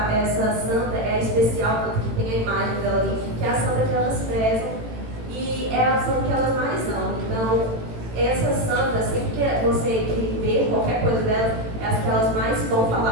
santa é especial, tanto que tem a imagem dela ali, que é a santa que elas rezam, e é a santa que elas mais amam. Então, essa santa, sempre que você vê qualquer coisa dela, é as que elas mais vão falar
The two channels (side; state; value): left; late; 18 ms